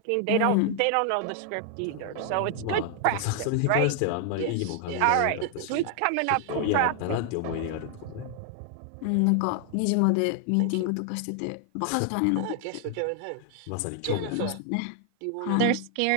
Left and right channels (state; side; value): different; both; correlation 0.00